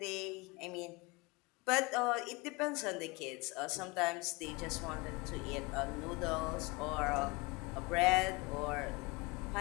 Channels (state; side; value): quieter; right; 25.2 dB